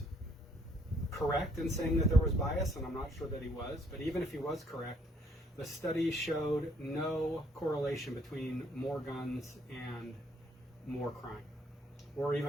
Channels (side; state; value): both; normal; correlation 0.66